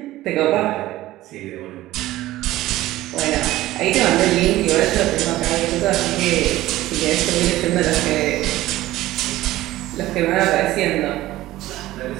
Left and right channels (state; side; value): quieter; left; 16.1 dB